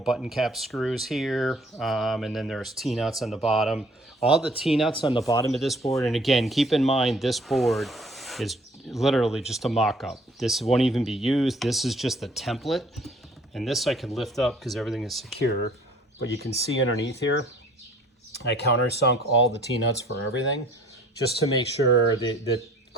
cap screws here. And then there's T-nuts on the bottom. All the T-nuts on the bottom of this board. And again, keep in mind, this board is literally just a mock-up. This won't even be used. This is just the template. And this I can lift up because everything is secure. But you can see underneath here, I countersunk all the T-nuts for everything, just to make sure the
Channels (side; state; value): both; normal; correlation 0.55